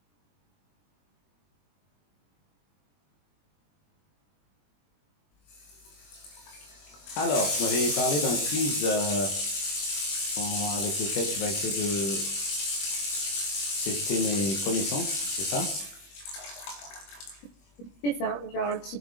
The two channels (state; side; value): late; right; 21 ms